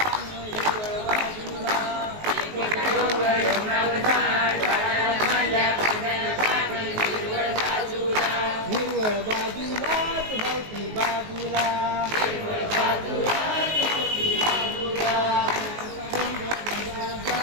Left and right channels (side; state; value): left; late; 19 ms